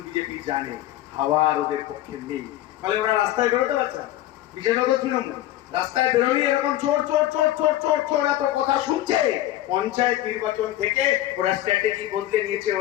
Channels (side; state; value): right; quieter; 14.3 dB